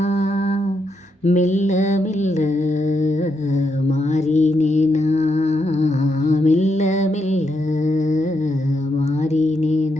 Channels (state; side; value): normal; both; correlation 0.81